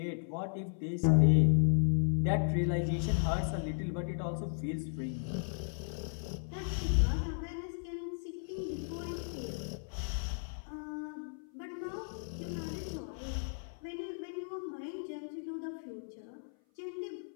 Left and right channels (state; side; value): silent; right; 54 dB below the other